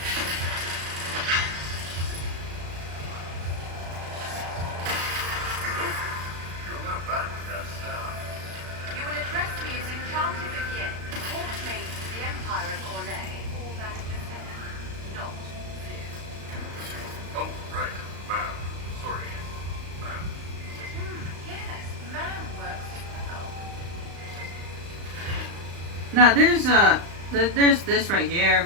You're not bad with that stuff. You will address me as Enchanted Vivienne, Court Mage of the Empire of Orlais, or Madame de Fer, not Viv. Oh, right. Ma'am. Sorry. Ma'am. Yes, man works as well. Now there's this right here.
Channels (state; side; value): late; left; 35 ms